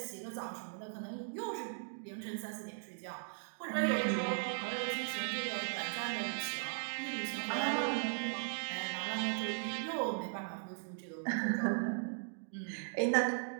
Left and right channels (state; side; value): silent; left; digital silence